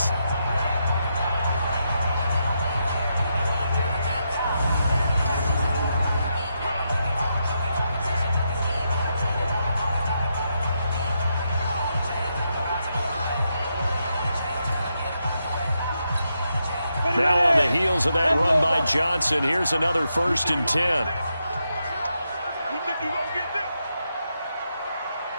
Now on the heels of that run by Johnson, here's another 1st and 10. You think you gonna get this?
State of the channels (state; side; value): inverted; both; correlation -0.83